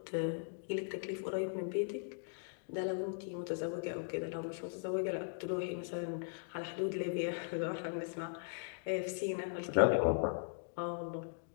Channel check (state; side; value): silent; right; digital silence